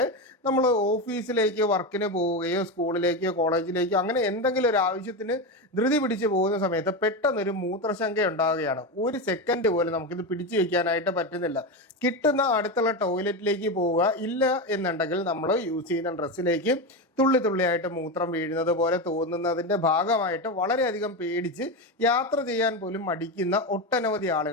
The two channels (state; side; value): normal; both; correlation 0.16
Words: നമ്മൾ ഓഫീസിലേക്ക് വർക്കിന് പോവുകയോ സ്കൂളിലേക്കോ കോളേജിലേക്കോ അങ്ങനെ എന്തെങ്കിലും ഒരു ആവശ്യത്തിന് ധൃതി പിടിച്ച് പോകുന്ന സമയത്ത് പെട്ടെന്നൊരു മൂത്രശങ്ക ഉണ്ടാവുകയാണ്. ഒരു സെക്കൻഡ് പോലും നമുക്കിത് പിടിച്ചു വെക്കാനായിട്ട് പറ്റുന്നില്ല. കിട്ടുന്ന അടുത്തുള്ള ടോയ്ലറ്റിലേക്ക് പോവുക, ഇല്ല എന്നുണ്ടെങ്കിൽ നമ്മൾ യൂസ് ചെയ്യുന്ന ഡ്രസ്സിലേക്ക് തുള്ളി തുള്ളിയായിട്ട് മൂത്രം വീഴുന്നത് പോലെ തോന്നുന്നതിന്റെ ഭാഗമായിട്ട് വളരെയധികം പേടിച്ച് യാത്ര ചെയ്യാൻ പോലും മടിക്കുന്ന ഒട്ടനവധി